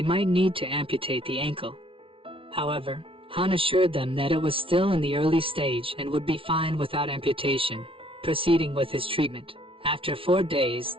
might need to amputate the ankle. However, Han assured them that it was still in the early stage and would be fine without amputation, proceeding with his treatment. After 4 days,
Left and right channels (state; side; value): late; left; 0.26 ms